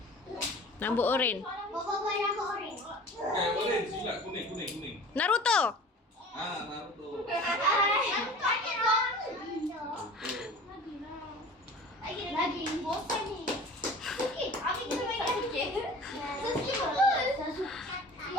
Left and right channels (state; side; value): normal; both; correlation 0.41